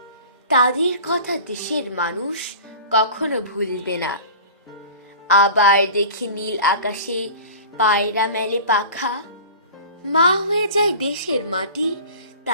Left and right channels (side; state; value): both; inverted; correlation -0.39